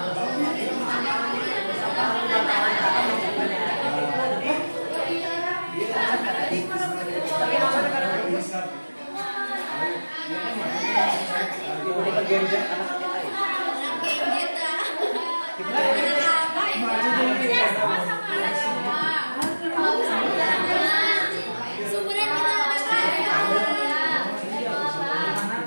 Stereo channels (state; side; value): inverted; both; correlation -1.00